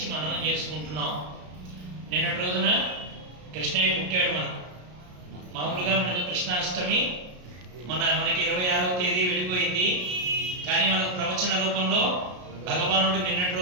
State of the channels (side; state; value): left; late; 33 ms